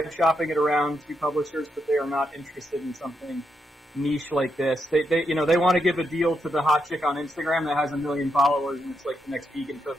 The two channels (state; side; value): normal; both; correlation 0.82